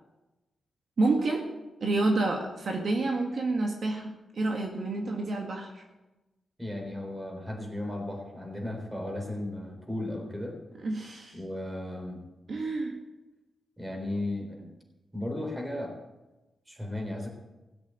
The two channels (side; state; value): both; normal; correlation 0.88